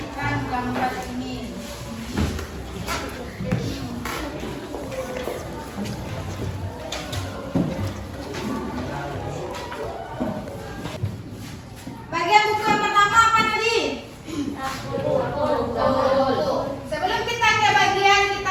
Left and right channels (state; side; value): identical; both; correlation 1.00